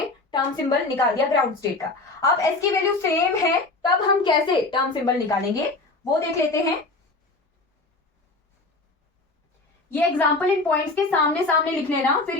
टर्म सिंबल निकाल दिया ग्राउंड स्टेट का। अब S की वैल्यू सेम है, तब हम कैसे टर्म सिंबल निकालेंगे वो देख लेते हैं। ये एग्जांपल इन पॉइंट्स के सामने सामने लिख लेना, फिर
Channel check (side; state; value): right; quieter; 3.3 dB